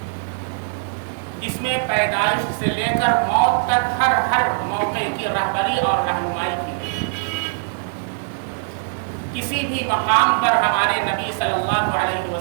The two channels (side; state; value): left; silent; digital silence